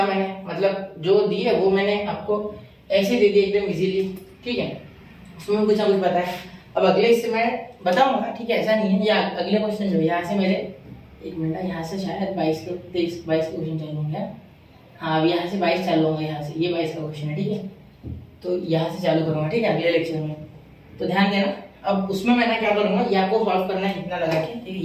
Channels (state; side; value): identical; both; correlation 1.00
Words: मैंने, मतलब जो दी है वो मैंने आपको ऐसे दे दी एकदम इजीली, ठीक है, उसमें कुछ ना कुछ बताया। अब अगले इससे मैं बताऊंगा, ठीक है, ऐसा नहीं है। या अगले क्वेश्चन जो यहाँ से मेरे, एक मिनट, यहाँ से शायद 22 के 23 22 के क्वेश्चन चालू होंगे। हाँ, अब यहाँ से 22 चालू होंगे, यहाँ से ये 22 का क्वेश्चन है, ठीक है, तो यहाँ से चालू करूँगा, ठीक है, अगले लेक्चर में, तो ध्यान देना। अब उसमें मैं क्या करूँगा, ये आपको सॉल्व करना है इतना लगा के, ठीक है,